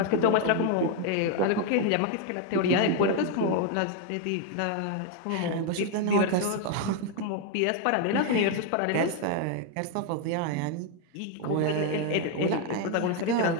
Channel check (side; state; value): both; different; correlation 0.01